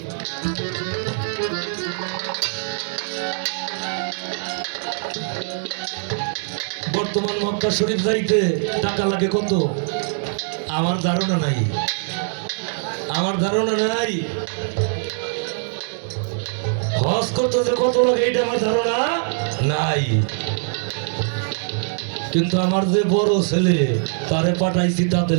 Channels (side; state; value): left; silent; digital silence